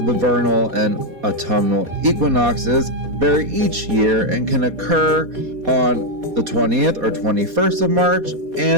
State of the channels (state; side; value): late; left; 4.2 ms